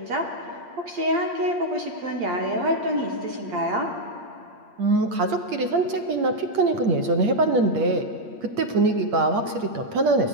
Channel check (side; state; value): left; late; 8.6 ms